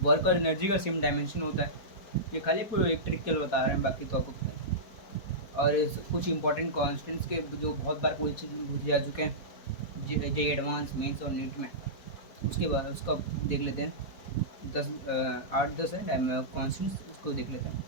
वर्क और एनर्जी का सेम डायमेंशन होता है। ये खाली एक ट्रिक के लिए बता रहे हैं, बाकी तो आपको पता है। और कुछ इंपॉर्टेंट कॉन्स्टेंट्स के जो बहुत बार पूछे जा चुके हैं जे एडवांस, मेंस और नीट में, उसके बाद उसका देख लेते हैं। 8-10 है कॉन्स्टेंट्स, उसको देख लेते हैं।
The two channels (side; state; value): right; late; 4.5 ms